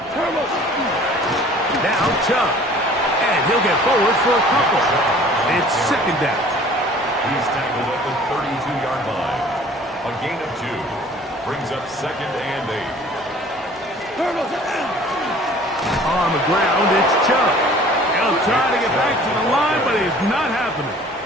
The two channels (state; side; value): normal; both; correlation 0.50